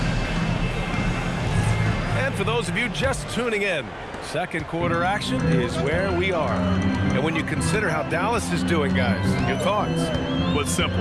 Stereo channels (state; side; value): identical; both; correlation 1.00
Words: For those of you just tuning in, second quarter action is where we are. And when you consider how Dallas is doing, guys, your thoughts? Well, it's simple.